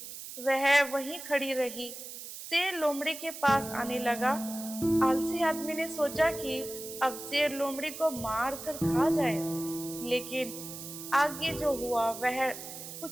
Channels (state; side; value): noise; right; hiss, 11 dB below the sound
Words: वह वहीं खड़ी रही। शेर लोमड़ी के पास आने लगा। आलसी आदमी ने सोचा कि अब शेर लोमड़ी को मार कर खा जाएगा, लेकिन आगे जो हुआ वह